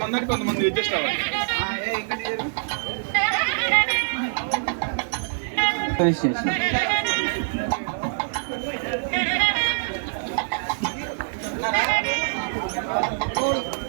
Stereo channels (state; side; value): silent; left; 62 dB below the other